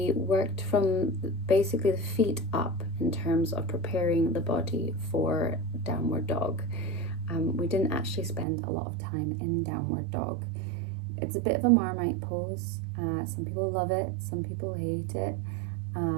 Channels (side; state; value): left; drops out; at 8.5 s